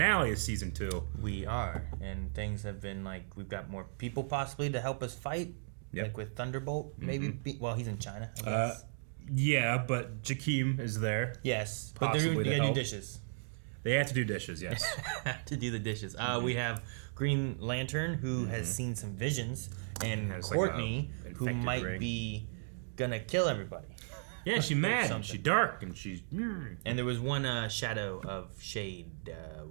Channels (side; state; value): left; silent; digital silence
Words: of Season 2. We are, and things have been like, we've got more people possibly to help us fight. Yep. Like with Thunderbolt, maybe. Well, he's in China, I guess. Yeah, but Jakeem is there. Yes, but they gotta do dishes. They have to do dishes, yes. To do the dishes. We have Green Lantern, who has seen some visions, and Courtney, who might be gonna kill everybody. Yeah, she's mad. She's dark, and she's... And there was one shadow of Shade